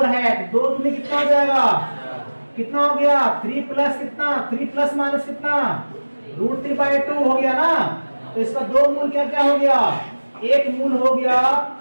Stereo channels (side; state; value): both; inverted; correlation -1.00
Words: है, तो 2 में कितना हो जाएगा, कितना हो गया 3 प्लस कितना 3 प्लस माइनस कितना √3 बाई 2 हो गया ना, तो इसका 2 मूल क्या क्या हो गया, एक मूल हो गया